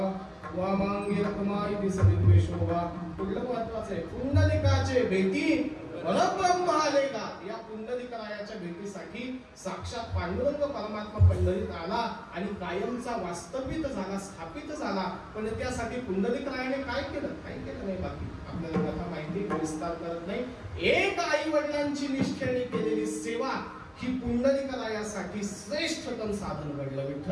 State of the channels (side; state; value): both; identical; correlation 1.00